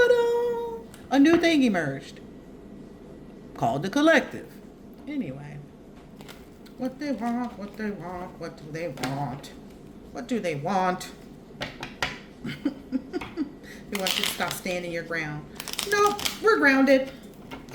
new thing emerged called the collective. Anyway. What they want, what do they want, what do they want? They want you to stop standing your ground. Nope, we're grounded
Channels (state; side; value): identical; both; correlation 1.00